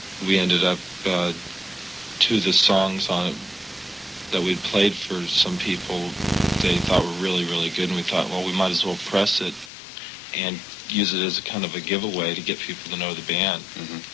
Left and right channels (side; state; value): right; drops out; at 9.7 s